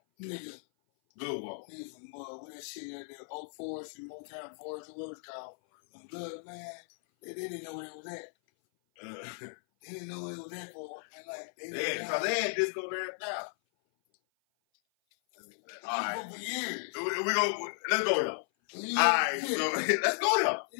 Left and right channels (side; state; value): right; silent; 55 dB below the other